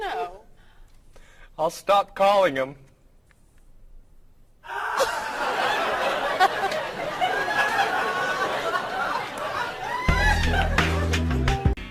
I'll stop calling him.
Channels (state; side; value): identical; both; correlation 1.00